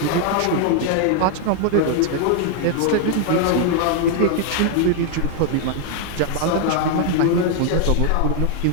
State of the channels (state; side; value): different; both; correlation 0.01